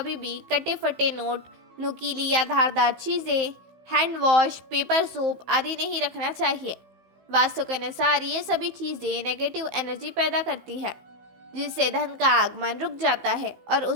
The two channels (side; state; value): left; late; 15 ms